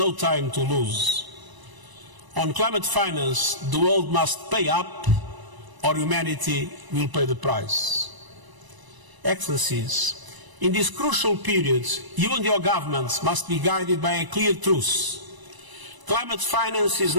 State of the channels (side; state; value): left; late; 1.0 ms